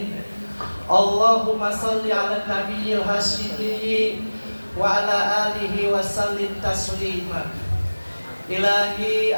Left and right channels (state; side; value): inverted; both; correlation -1.00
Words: Allahumma shalli ala nabiyyil hasyimi wa ala alihi wa sallim taslima. Ilahi